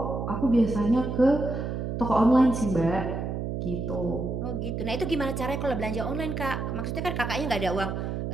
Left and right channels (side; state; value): right; noise; hum, 3 dB below the sound